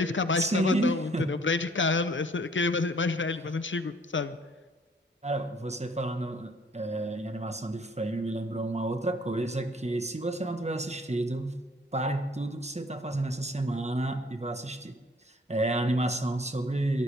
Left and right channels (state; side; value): normal; both; correlation 0.59